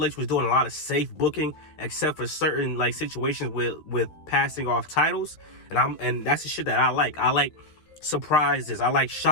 H was doing a lot of safe booking, except for certain like situations with passing off titles, and that's the shit that I like. I like surprises. I like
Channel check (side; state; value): right; late; 13 ms